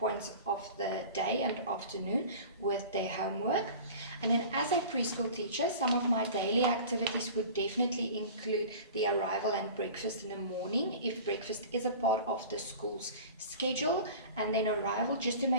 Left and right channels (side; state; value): both; inverted; correlation -0.38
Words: of the day and afternoon with their homework. And then as a preschool teacher, some of my daily activities would definitely include the arrival and breakfast in the morning, if breakfast is a part of the school's schedule, and then arrival, just to